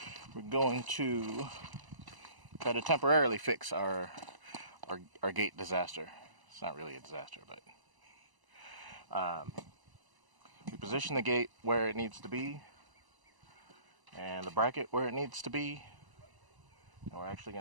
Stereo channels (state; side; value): late; left; 1.0 ms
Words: we're going to try to temporarily fix our gate disaster. It's not really a disaster, but we position the gate where it needs to be and the bracket where it needs to be, and we're actually